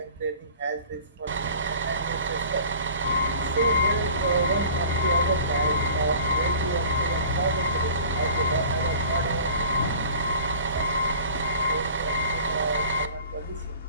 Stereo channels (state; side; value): inverted; both; correlation -0.45